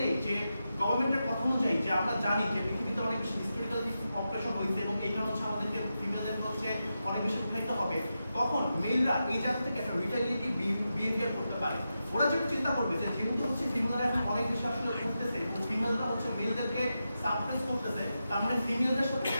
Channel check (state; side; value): inverted; both; correlation -0.89